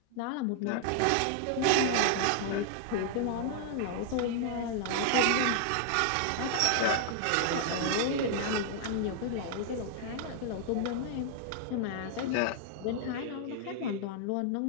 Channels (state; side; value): different; both; correlation -0.01